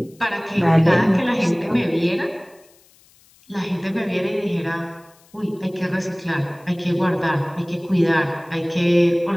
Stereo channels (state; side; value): noise; left; hiss, 30 dB below the sound